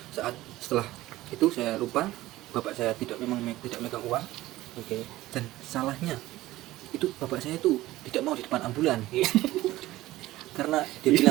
saat setelah itu saya lupa, bapak saya tidak tidak megang uang. Oke. Dan salahnya itu bapak saya itu tidak mau di depan ambulan. Karena dia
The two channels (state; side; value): quieter; left; 16.7 dB